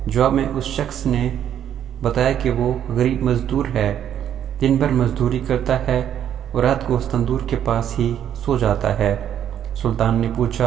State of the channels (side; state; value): left; quieter; 9.9 dB